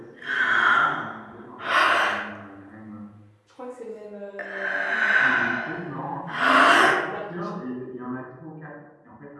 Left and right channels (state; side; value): identical; both; correlation 1.00